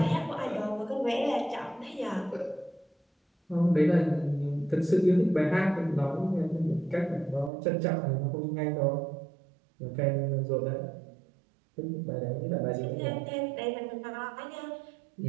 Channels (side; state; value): left; drops out; at 7.5 s